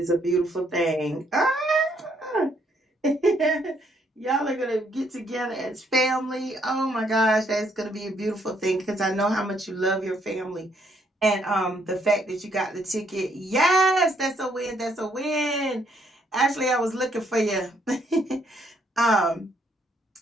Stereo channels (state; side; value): normal; both; correlation 0.70